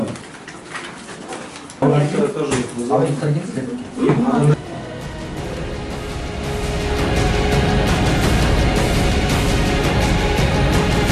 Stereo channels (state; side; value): identical; both; correlation 1.00